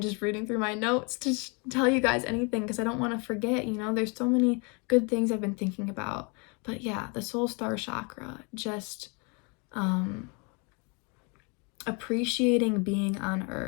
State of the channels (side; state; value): right; quieter; 32.7 dB